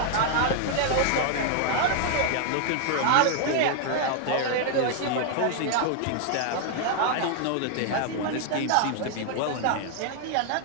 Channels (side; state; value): both; different; correlation 0.00